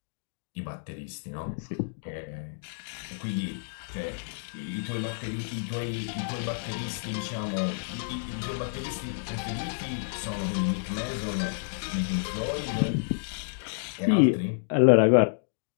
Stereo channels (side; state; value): right; silent; digital silence